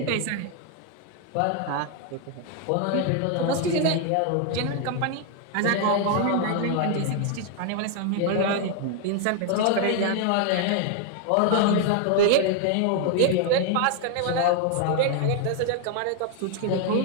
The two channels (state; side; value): different; both; correlation 0.00